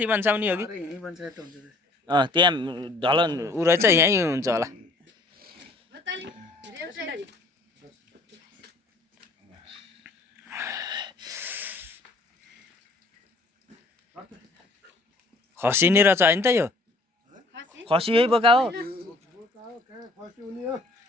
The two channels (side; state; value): right; quieter; 3.0 dB